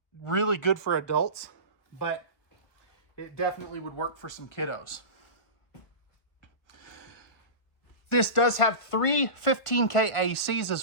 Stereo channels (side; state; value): right; late; 1.5 ms